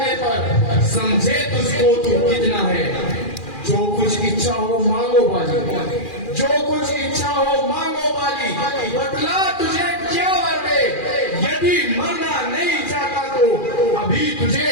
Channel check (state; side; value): late; right; 2.4 ms